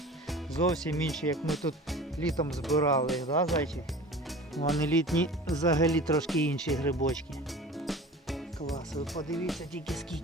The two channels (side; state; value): both; normal; correlation 0.38